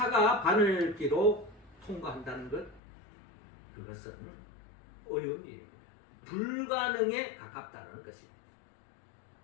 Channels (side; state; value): right; drops out; at 2.8 s